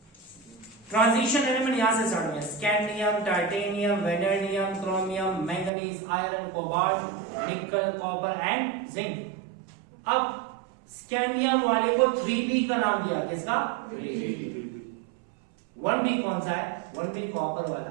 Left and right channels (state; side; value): drops out; left; at 5.7 s